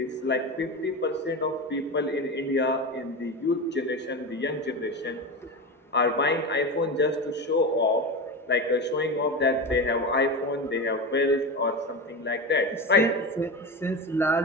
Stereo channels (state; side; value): normal; both; correlation 0.22